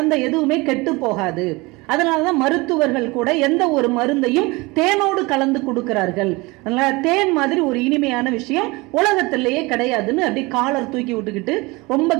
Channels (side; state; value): left; quieter; 23.9 dB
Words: எதுவுமே கெட்டு போகாது. அதனாலதான் மருத்துவர்கள் கூட எந்த ஒரு மருந்தையும் தேனோடு கலந்து கொடுக்கிறார்கள். அதனால தேன் மாதிரி ஒரு இனிமையான விஷயம் உலகத்திலேயே கிடையாதுன்னு அப்படி காலர் தூக்கி விட்டுக்கிட்டு ரொம்ப